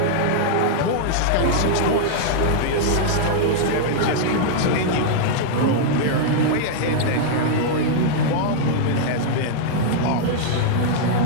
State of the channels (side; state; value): both; different; correlation -0.01